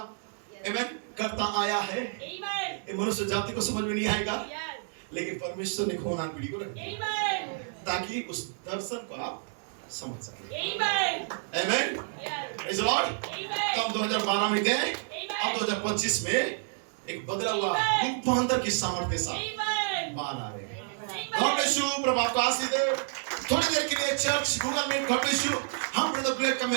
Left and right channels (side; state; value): left; silent; 58 dB below the other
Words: आमीन, करता आया है। ये मनुष्य जाति को समझ में नहीं आएगा, लेकिन परमेश्वर ने खोनान पीढ़ी को रखा ताकि उस दर्शन को आप समझ सके, आमीन, प्रेज़ द लॉर्ड। तो हम 2012 में गए, अब 2025 में एक बदला हुआ रूपांतर की सामर्थ्य के साथ बाहर आ रहे हैं। गॉड ब्लेस यू, प्रभु आपको आशीष दे। थोड़ी देर के लिए church Google Meet, God bless you, हम ब्रदर ब्लेड का